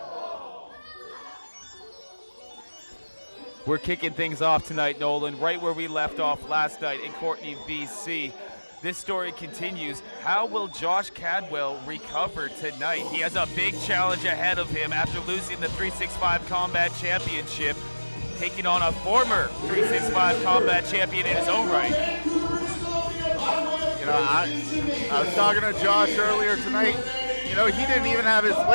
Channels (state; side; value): inverted; both; correlation -1.00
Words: We're kicking things off tonight, Nolan, right where we left off last night in Courtney, BC. This story continues. How will Josh Cadwell recover tonight? He has a big challenge ahead of him after losing the 365 Combat Championship, taking on a former 365 Combat champion in his own right. You know, I was talking to Josh earlier tonight. You know, he didn't even have his